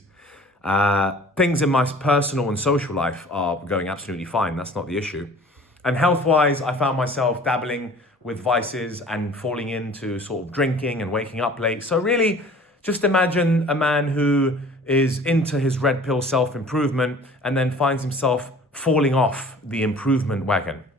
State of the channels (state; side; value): normal; both; correlation 0.47